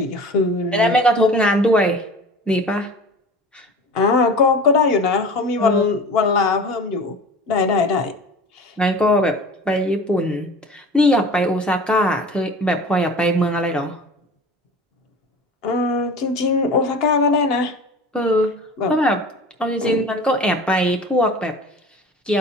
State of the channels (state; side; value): normal; both; correlation 0.38